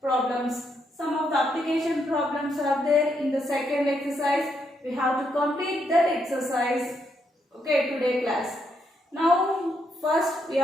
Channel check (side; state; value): both; normal; correlation 0.77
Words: problems. Some of the application problems are there in the second exercise. We have to complete that exercise. Okay, today class. Now first